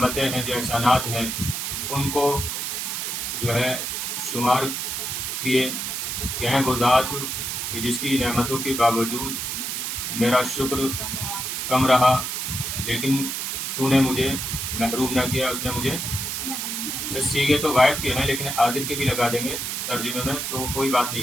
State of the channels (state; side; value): noise; right; hiss, 3 dB below the sound